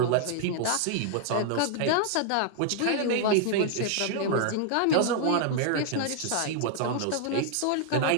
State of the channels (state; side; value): different; both; correlation 0.00